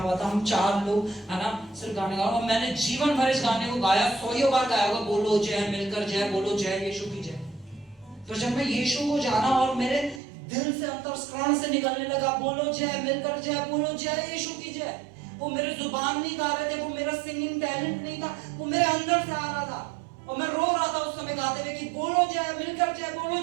हुआ था, हम 4 लोग, है ना, सिर्फ गाने गा रहे, और मैंने जीवन भर इस गाने को गाया, 100 बार गाया होगा। बोलो जय, मिलकर जय, बोलो जय, यीशु की जय। तो जब मैं यीशु को जाना और मेरे दिल से अंतःकरण से निकलने लगा। बोलो जय, मिलकर जय बोलो, जय यीशु की जय। वो मेरे जुबान नहीं गा रहे थे, वो मेरा सिंगिंग टैलेंट नहीं था, वो मेरे अंदर से आ रहा था और मैं रो रहा था उस समय गाते हुए कि बोलो जय, मिलकर जय बोलो,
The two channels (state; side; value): drops out; left; at 10.2 s